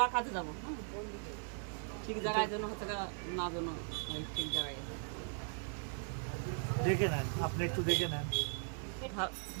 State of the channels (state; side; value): silent; left; 52 dB below the other